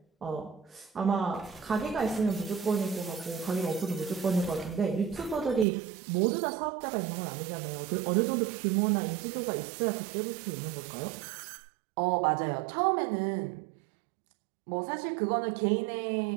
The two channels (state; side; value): drops out; left; at 5.7 s